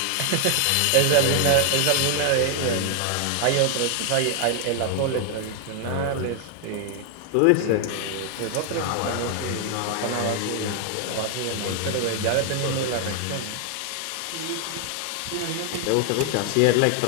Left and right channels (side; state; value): both; different; correlation 0.00